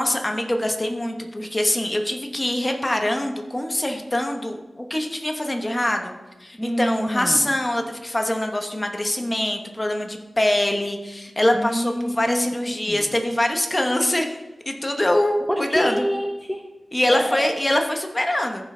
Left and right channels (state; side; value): normal; both; correlation 0.98